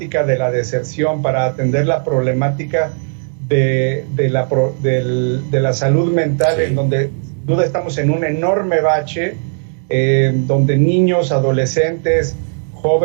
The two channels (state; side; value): silent; left; 64 dB below the other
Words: de la deserción, para atender la problemática de la salud mental, sí, en donde sin duda estamos en un enorme bache, donde niños, adolescentes,